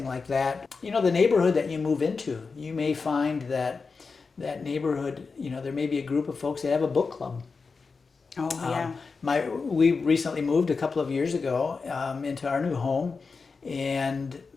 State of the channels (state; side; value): quieter; right; 4.7 dB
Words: like that. The neighborhood that you move into, you may find that neighborhood, there may be a group of folks that have a book club. Oh, yeah. We recently moved a couple of years ago into our new home, and